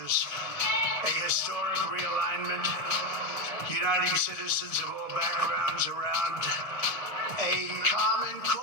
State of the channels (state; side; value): late; right; 1.6 ms